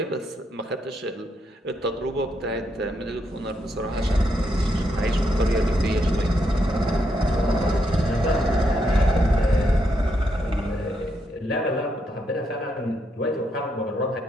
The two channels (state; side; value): normal; both; correlation 0.79